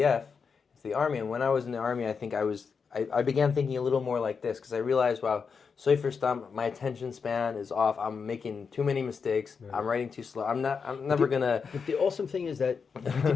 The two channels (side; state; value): right; quieter; 5.7 dB